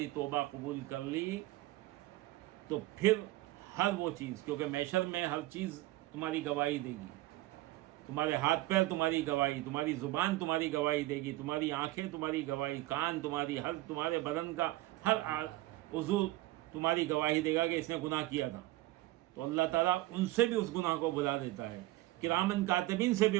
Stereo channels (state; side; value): quieter; left; 17.9 dB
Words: توبہ قبول کر لی تو پھر ہر وہ چیز، کیونکہ محشر میں ہر چیز تمہاری گواہی دے گی، تمہارے ہاتھ پیر تمہاری گواہی، تمہاری زبان تمہاری گواہی دے گی، تمہاری آنکھیں تمہاری گواہی، کان تمہاری، ہر تمہارے بدن کا ہر عضو تمہاری گواہی دے گا کہ اس نے گناہ کیا تھا۔ تو اللہ تعالیٰ ان سے بھی اس گناہ کو بلا دیتا ہے، کرامن کاتبین سے